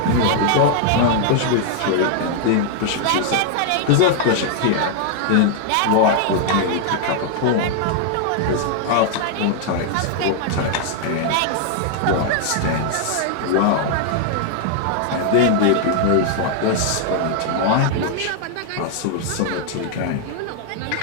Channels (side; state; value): both; different; correlation 0.00